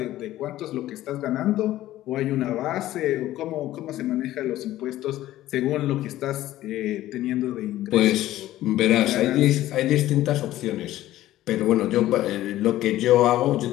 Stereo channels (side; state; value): right; quieter; 14.7 dB